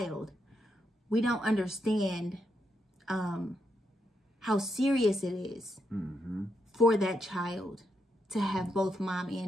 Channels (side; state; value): both; normal; correlation 0.81